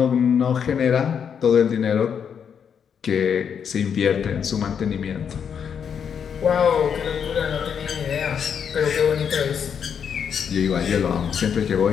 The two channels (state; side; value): quieter; right; 7.5 dB